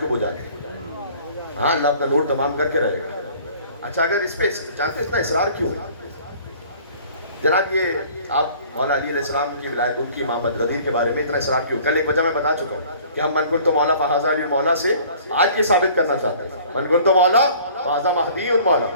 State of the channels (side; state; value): both; inverted; correlation -0.51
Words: بجھا دیں. ہاں، اللہ اپنا نور تمام کر کے رہے گا. اچھا، اگر اس پہ جانتے اتنا اصرار کیوں ہے جناب؟ یہ آپ مولا علی علیہ السلام کی ولایت، ان کی امامت، غدیر کے بارے میں اتنا اصرار کیوں؟ کل ایک وجہ میں بتا چکا ہوں کہ ہم من کنت مولا فہذا علی مولا سے آج یہ ثابت کرنا چاہتے ہیں، من کنت مولا فہذا مہدی مولا.